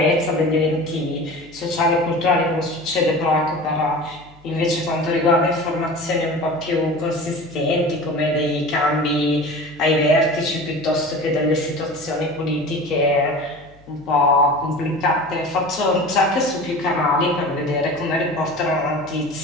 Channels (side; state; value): left; noise; hum, 27 dB below the sound